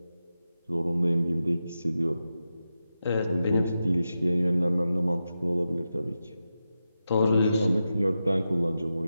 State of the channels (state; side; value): inverted; both; correlation -0.90